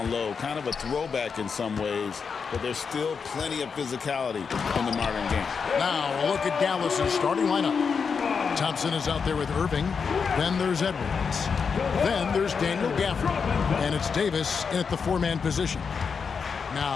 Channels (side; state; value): right; quieter; 5.8 dB